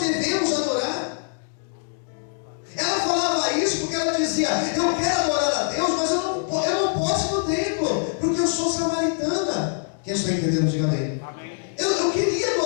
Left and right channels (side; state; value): right; silent; digital silence